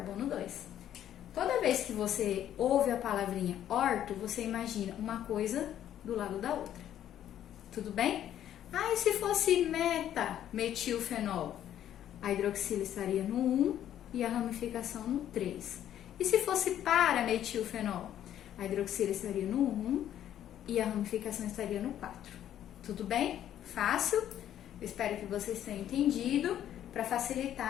2. Toda vez que você ouve a palavrinha orto, você imagina uma coisa do lado da outra. Tudo bem? E se fosse metilfenol? A hidroxila estaria no 1 e a ramificação no 3. E se fosse para-metilfenol? A hidroxila estaria no 1 e a ramificação estaria no 4. Tudo bem? Fácil? Eu espero que vocês tenham entendido para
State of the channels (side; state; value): right; quieter; 11.1 dB